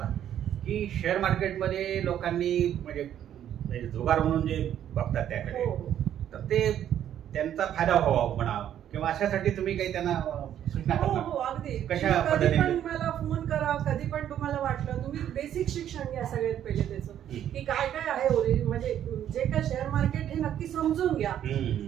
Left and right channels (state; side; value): quieter; left; 10.5 dB